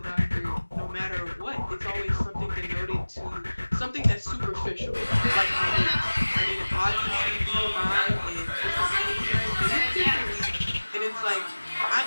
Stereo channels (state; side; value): inverted; both; correlation -1.00